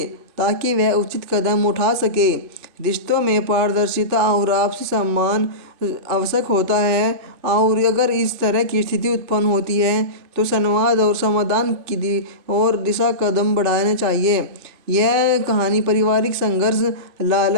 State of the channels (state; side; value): late; left; 2.5 ms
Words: ताकि वह उचित कदम उठा सके। रिश्तों में पारदर्शिता और आपसी सम्मान आवश्यक होता है और अगर इस तरह की स्थिति उत्पन्न होती है तो संवाद और समाधान की और दिशा कदम बढ़ाने चाहिए। यह कहानी पारिवारिक संघर्ष,